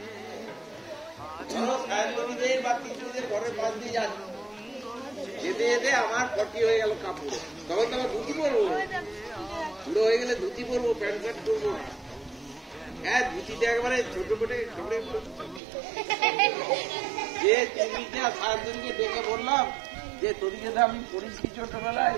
ধরো করবো, প্যান্ট শার্ট করবো না। হ্যাঁ, ধুতিতে একবারে ছোট পেটে যে তুমি সারাদিনকে ডেকে বললাম যে তোর যদি আমি পরিষ্কার ছোটবেলায়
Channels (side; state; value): left; drops out; at 15.6 s